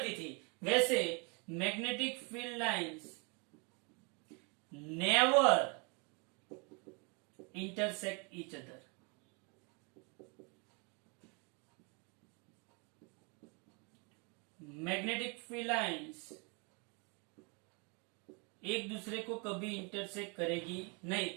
थी, वैसे magnetic field lines never intersect each other. Magnetic field lines एक दूसरे को कभी इंटरसेक्ट करेगी नहीं।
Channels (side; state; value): left; quieter; 33.0 dB